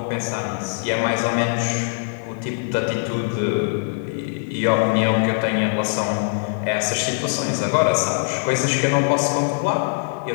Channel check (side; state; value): right; silent; 64 dB below the other